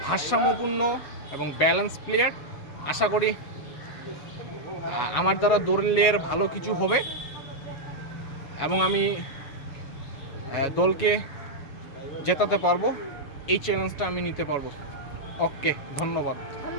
ভারসাম্যপূর্ণ এবং ব্যালেন্স প্লেয়ার। আশা করি আমার দ্বারা দলের ভালো কিছু হবে এবং আমি দলকে জেতাতে পারবো। এই চ্যালেঞ্জটা আমি নিতে পারবো। ওকে, ধন্যবাদ।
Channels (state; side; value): late; right; 7.2 ms